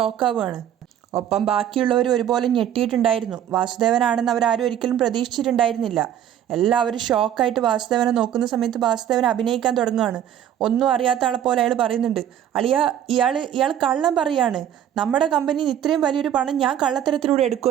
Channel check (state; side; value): quieter; left; 10.3 dB